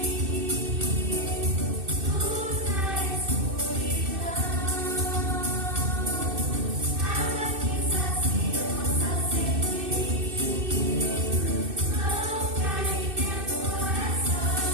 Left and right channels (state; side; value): late; left; 2.6 ms